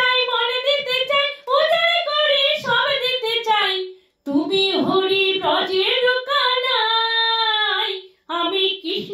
মন দিতে চাই, উজাড় করে সব দিতে চাই, তুমি হরি ব্রজের কানাই। আমি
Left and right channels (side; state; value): both; identical; correlation 1.00